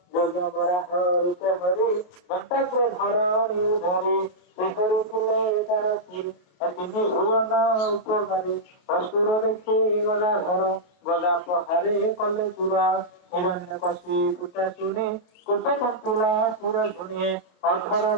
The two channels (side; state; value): right; late; 28 ms